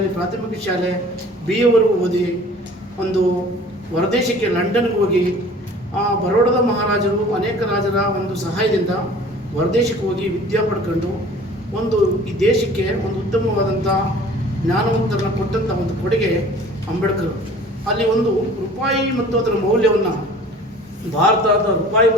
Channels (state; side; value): normal; both; correlation 0.47